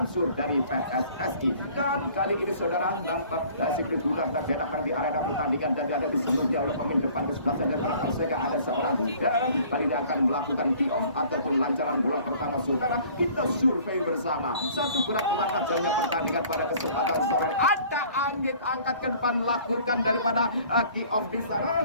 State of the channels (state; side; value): inverted; both; correlation -0.52